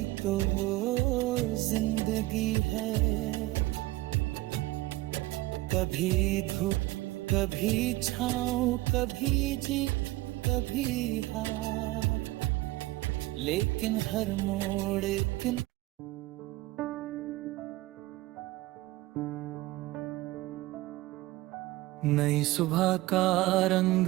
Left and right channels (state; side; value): quieter; left; 18.9 dB